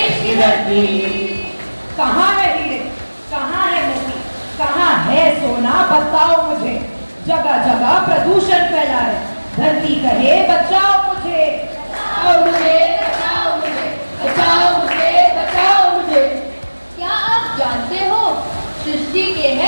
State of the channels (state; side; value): inverted; both; correlation -1.00